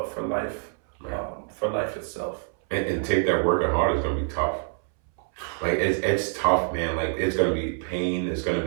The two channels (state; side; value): silent; left; 61 dB below the other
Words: for life itself. And take that working hard is gonna be tough. Like it's tough, man. Like it's gonna be pain. It's gonna